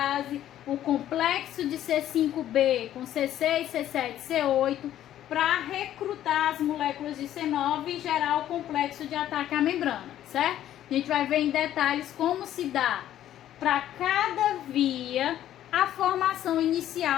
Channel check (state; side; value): quieter; right; 12.0 dB